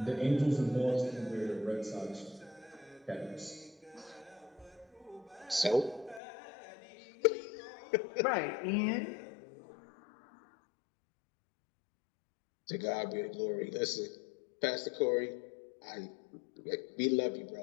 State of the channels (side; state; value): right; drops out; at 6.2 s